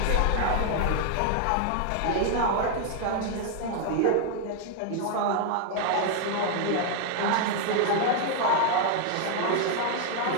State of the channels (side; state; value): both; different; correlation 0.00